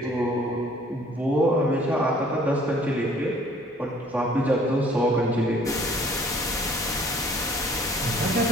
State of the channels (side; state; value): both; normal; correlation 0.57